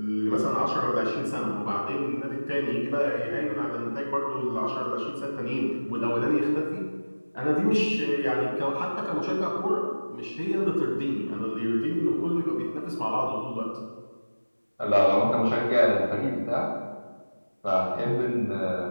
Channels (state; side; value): inverted; both; correlation -1.00